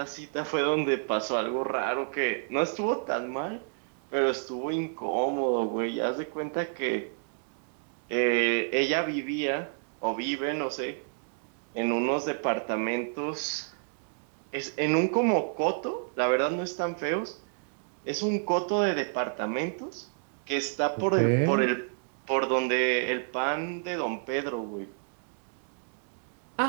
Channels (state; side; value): silent; left; digital silence